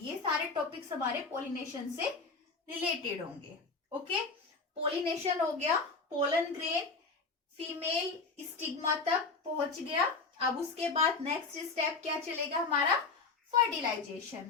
ये सारे टॉपिक्स हमारे पोलिनेशन से रिलेटेड होंगे। ओके, पोलिनेशन हो गया, पोलन ग्रेन फीमेल स्टिग्मा तक पहुंच गया। अब उसके बाद नेक्स्ट स्टेप क्या चलेगा हमारा,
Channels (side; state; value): right; quieter; 4.2 dB